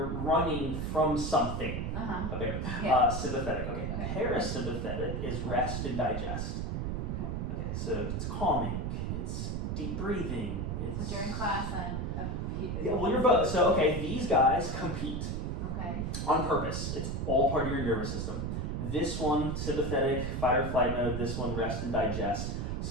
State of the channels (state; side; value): noise; right; rumble, 2 dB below the sound